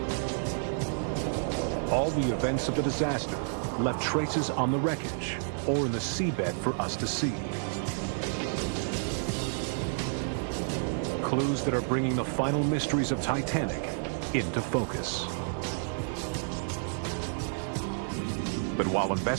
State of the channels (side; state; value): left; silent; 57 dB below the other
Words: All the events of the disaster left traces on the wreckage or in the seabed for us to see. Clues that are bringing the final mysteries of Titanic into focus. But while